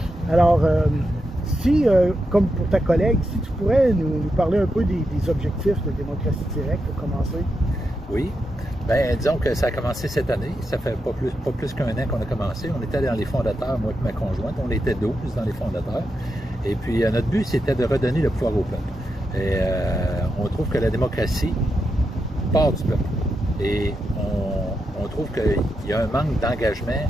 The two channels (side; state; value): both; normal; correlation 0.86